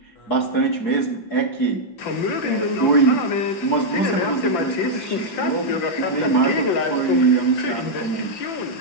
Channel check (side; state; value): right; late; 5.9 ms